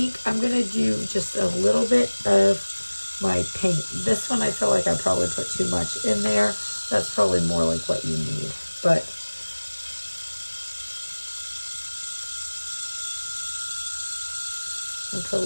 I'm going to do just a little bit of my paint. This one I feel like I probably put too much in there. That's probably more like what you need. But I'll put a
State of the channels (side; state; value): both; inverted; correlation -1.00